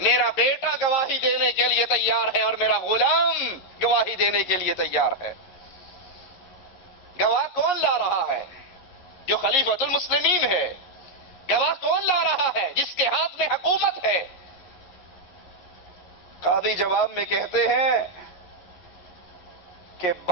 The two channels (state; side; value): late; right; 11 ms